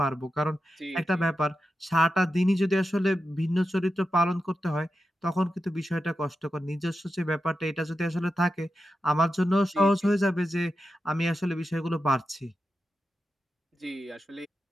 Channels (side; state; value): both; normal; correlation 0.90